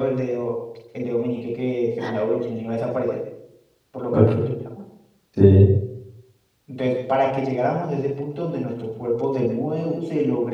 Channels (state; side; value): identical; both; correlation 1.00